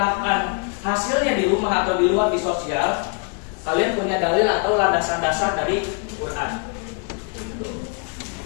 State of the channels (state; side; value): quieter; right; 36.9 dB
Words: hasilnya di rumah atau di luar di sosial, kalian punya dalil atau landasan dasar dari Quran.